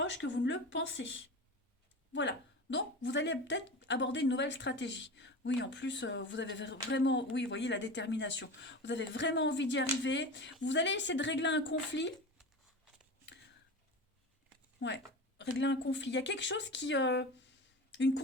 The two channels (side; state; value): both; normal; correlation 0.29